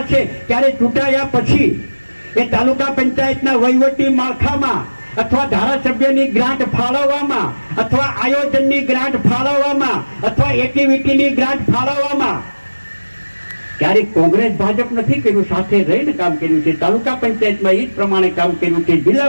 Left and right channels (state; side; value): inverted; both; correlation -1.00